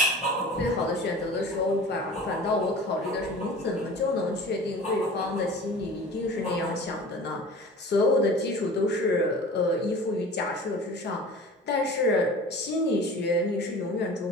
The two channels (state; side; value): normal; both; correlation 0.40